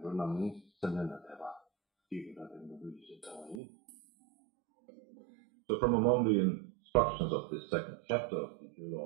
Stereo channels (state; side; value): drops out; left; at 3.6 s